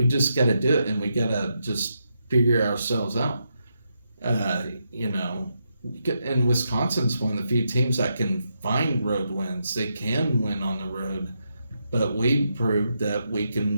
just got to do it, and we got to just figure ourselves out. And Wisconsin's one of the few teams that can find road wins. They can win on the road. But we proved that we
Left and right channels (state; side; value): inverted; both; correlation -0.83